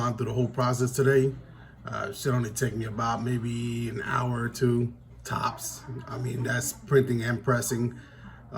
through the whole process today. Should only take me about maybe an hour or two tops. I mean, that's printing and pressing.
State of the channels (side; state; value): both; identical; correlation 1.00